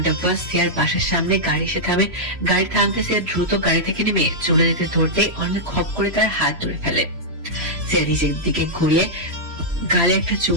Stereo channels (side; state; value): left; late; 3.0 ms